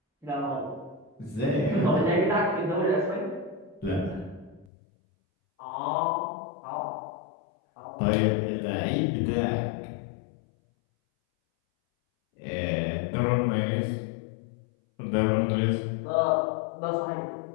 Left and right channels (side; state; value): right; drops out; at 4.7 s